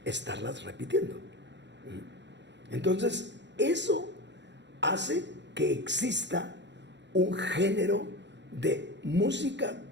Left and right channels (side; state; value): left; late; 0.52 ms